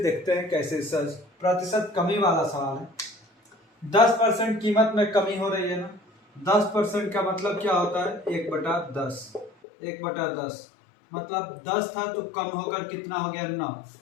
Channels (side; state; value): right; drops out; at 9.5 s